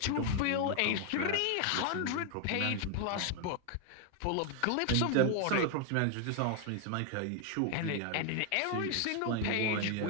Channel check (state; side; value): different; both; correlation 0.01